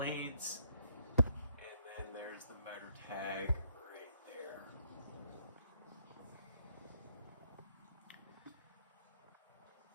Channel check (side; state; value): both; inverted; correlation -0.71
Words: and then there's the motor tag right there.